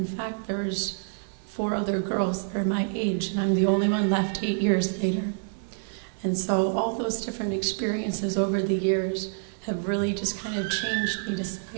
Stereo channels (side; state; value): left; silent; digital silence